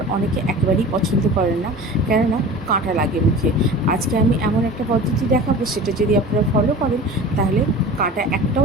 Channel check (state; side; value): normal; both; correlation 0.37